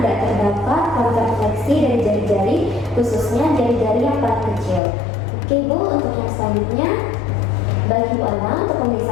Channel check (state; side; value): drops out; right; at 4.8 s